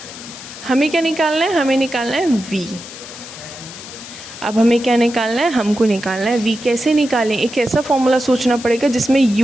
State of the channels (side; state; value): left; noise; hiss, 14 dB below the sound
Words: हमें क्या निकालना है, हमें निकालना है v। अब हमें क्या निकालना है, हमको निकालना है v। कैसे निकालें, एक ऐसा फॉर्मूला सोचना पड़ेगा जिसमें